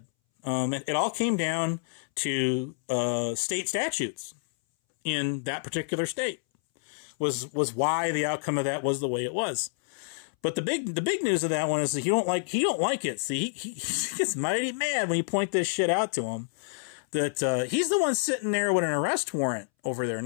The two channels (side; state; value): right; silent; 59 dB below the other